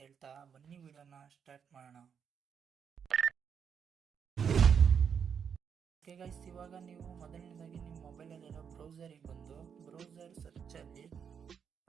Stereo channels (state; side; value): quieter; left; 7.2 dB